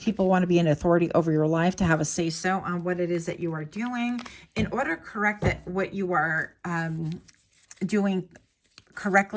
want to be an authority over your life, to have a say-so on what it is that you are doing in order to correct that what you are doing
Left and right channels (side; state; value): both; identical; correlation 1.00